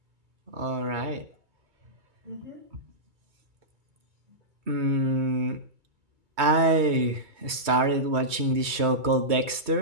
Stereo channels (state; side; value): late; left; 2.2 ms